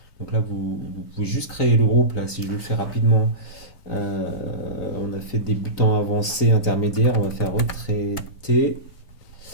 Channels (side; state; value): right; late; 3.9 ms